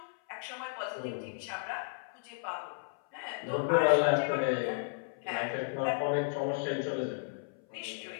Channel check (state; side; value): silent; right; 55 dB below the other